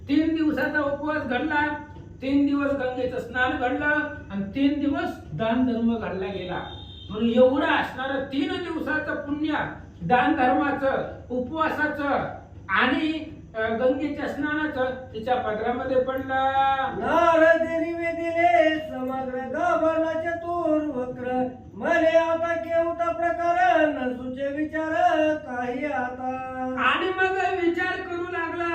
3 दिवसाचा उपवास घडला. 3 दिवस गंगेचं स्नान घडलं आणि 3 दिवस दान धर्म घडला गेला. म्हणून एवढं असणारं 3 दिवसाचं पुण्य दान धर्माचं, उपवासाचं आणि गंगेच्या स्नानाचं तिच्या पदरामध्ये पडलं. नारदेनी वेदिले समग्र गाभारला चतुर वक्र मले आता केवता प्रकार न सुचे विचार काही आता. आणि मग विचार करू लागला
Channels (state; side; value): identical; both; correlation 1.00